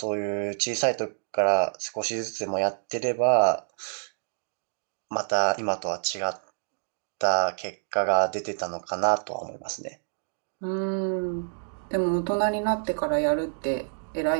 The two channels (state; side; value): silent; left; digital silence